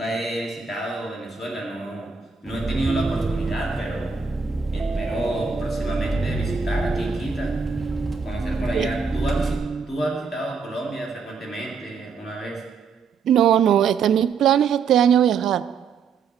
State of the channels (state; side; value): quieter; left; 5.6 dB